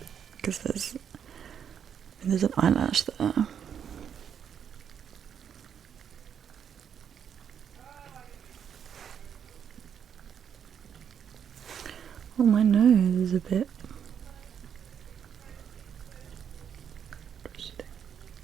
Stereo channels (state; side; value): quieter; left; 8.1 dB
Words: because there's an eyelash there. a bit.